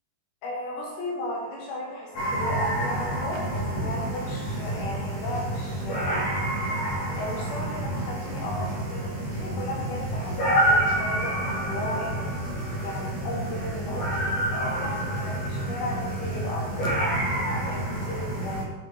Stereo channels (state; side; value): late; right; 21 ms